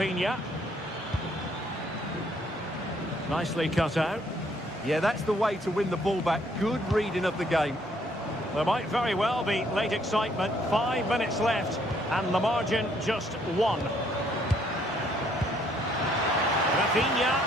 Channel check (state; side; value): normal; both; correlation 0.67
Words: Nicely cut out. Yeah, that's the way to win the ball back. Good reading of the game. There might very well be late excitement. 5 minutes left. And the margin just 1. Rafinha.